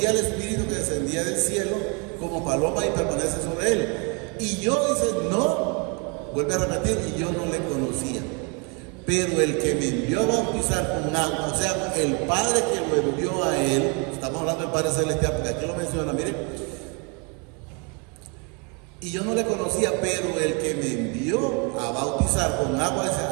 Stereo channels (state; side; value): quieter; left; 32.9 dB